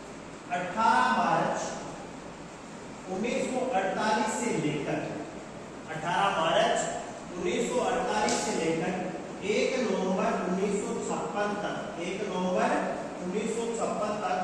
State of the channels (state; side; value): identical; both; correlation 1.00